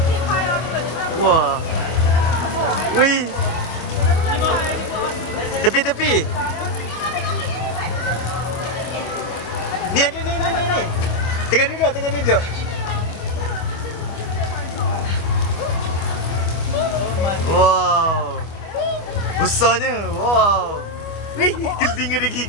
Wah. Wih. Tepi. Ni. Tengah duduk. Wow. Besarnya. Wow. Wih, telinga dia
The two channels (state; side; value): late; right; 25 ms